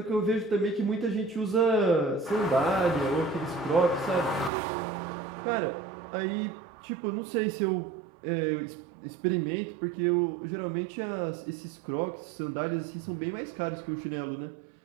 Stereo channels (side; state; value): left; drops out; at 4.5 s